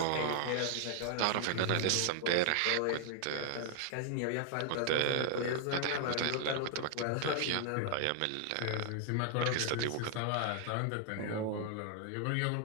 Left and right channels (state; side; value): different; both; correlation 0.00